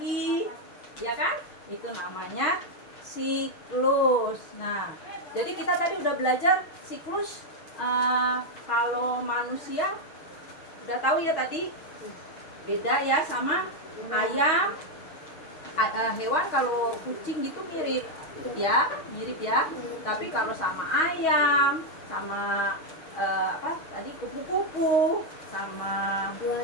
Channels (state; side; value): late; right; 6.3 ms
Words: Ya kan? Itu namanya siklus. Nah, jadi kita tadi udah belajar siklus. Kalau manusia udah tahu ya tadi, beda ya sama ayam. Hewan kalau kucing gitu mirip ya. Tapi kalau sama ayam, sama apa tadi kupu-kupu, sama